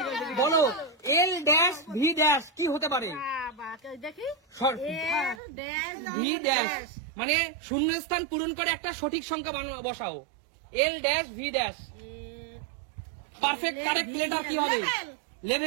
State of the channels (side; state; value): left; drops out; at 5.4 s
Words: বলো এল ড্যাশ ভি ড্যাশ কি হতে পারে? ভি ড্যাশ মানে শূন্যস্থান পূরণ করে একটা সঠিক সংখ্যা বসাও। L dash V dash perfect correct letter কি হবে?